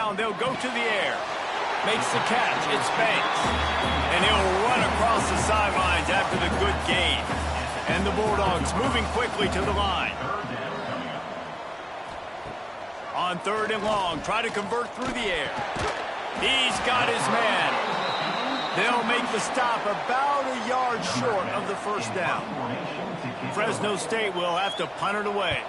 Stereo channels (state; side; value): identical; both; correlation 1.00